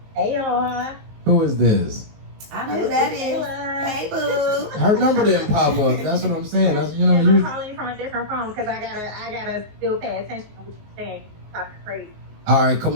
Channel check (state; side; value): late; left; 19 ms